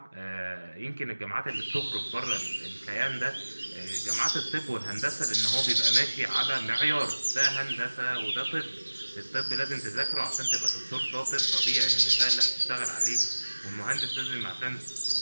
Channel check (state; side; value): inverted; both; correlation -1.00